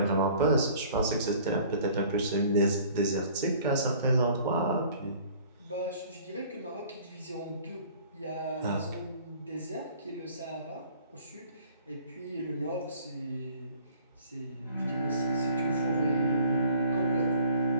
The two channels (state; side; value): inverted; both; correlation -0.52